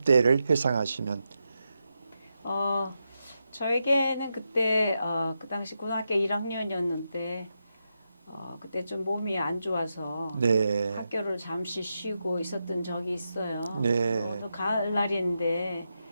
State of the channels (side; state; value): both; inverted; correlation -0.86